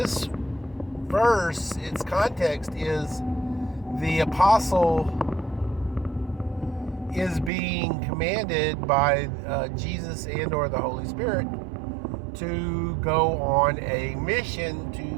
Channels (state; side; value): drops out; left; at 7.5 s